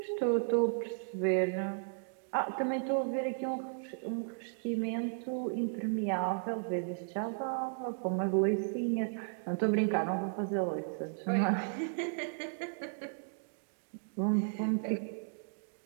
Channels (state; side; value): silent; left; digital silence